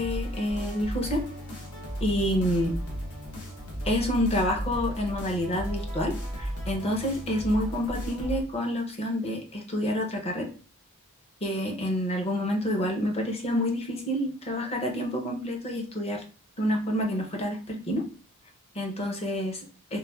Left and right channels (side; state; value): both; normal; correlation 0.57